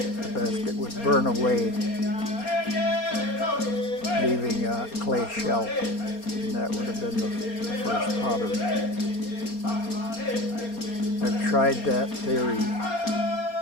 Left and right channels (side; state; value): right; late; 4.3 ms